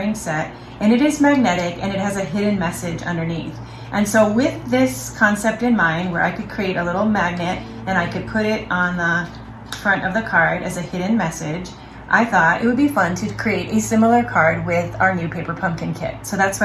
set, and it is magnetic and it has a hidden message underneath. And so with this concept in mind, where I could create a little magnet and I could put it on the front of the card as a hidden message, I thought it would be fun to create a similar card with our new paper pumpkin kit. So that's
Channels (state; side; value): identical; both; correlation 1.00